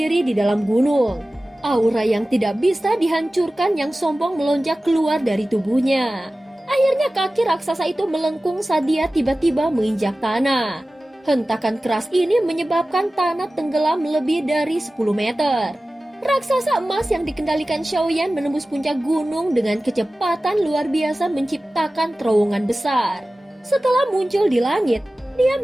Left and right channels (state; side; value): normal; both; correlation 0.96